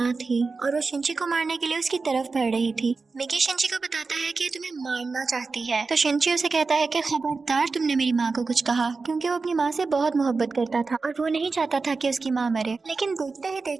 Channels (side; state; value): left; quieter; 4.2 dB